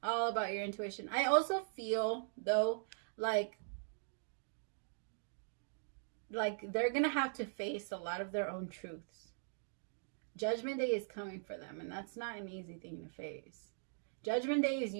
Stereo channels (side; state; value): left; silent; digital silence